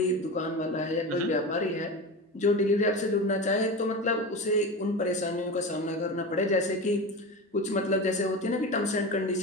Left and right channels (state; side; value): normal; both; correlation 0.26